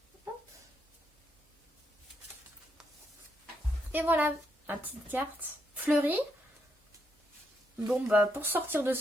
Hop. Et voilà, ma petite carte fleurie. Bon bah pour sortir de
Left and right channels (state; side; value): normal; both; correlation 0.78